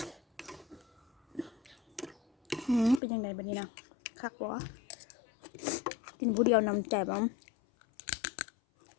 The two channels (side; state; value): right; drops out; at 3.0 s